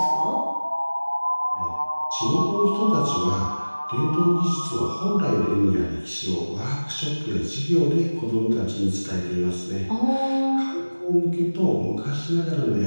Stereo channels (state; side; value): inverted; both; correlation -1.00